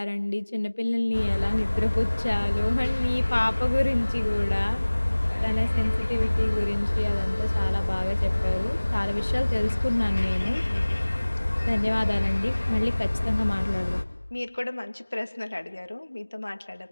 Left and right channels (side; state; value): both; inverted; correlation -1.00